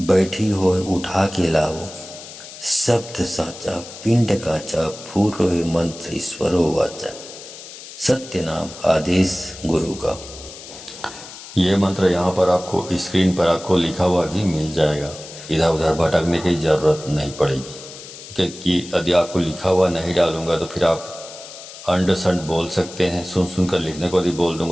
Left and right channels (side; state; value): left; noise; hiss, 15 dB below the sound